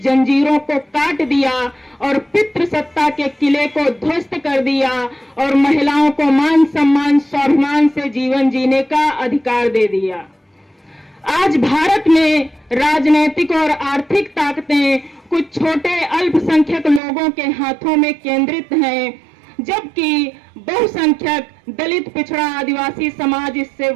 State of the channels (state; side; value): drops out; left; at 17.0 s